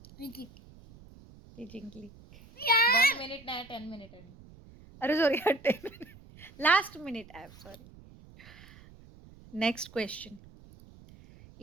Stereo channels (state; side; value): noise; right; rumble, 21 dB below the sound